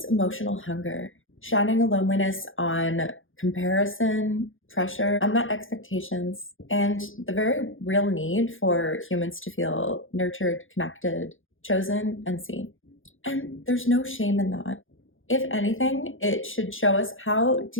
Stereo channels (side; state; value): right; late; 0.58 ms